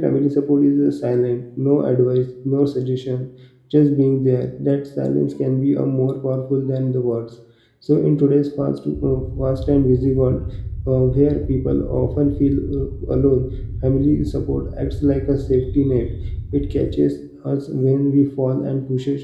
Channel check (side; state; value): both; identical; correlation 1.00